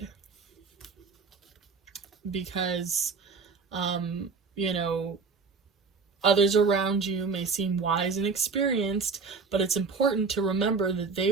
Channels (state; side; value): quieter; left; 4.9 dB